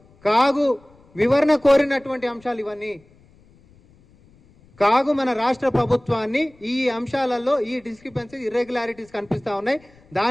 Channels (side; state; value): left; noise; rumble, 29 dB below the sound